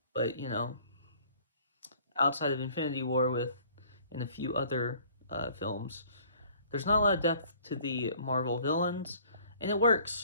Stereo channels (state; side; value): inverted; both; correlation -0.55